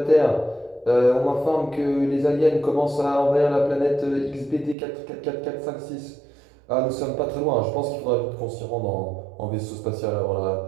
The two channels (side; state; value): left; drops out; at 4.8 s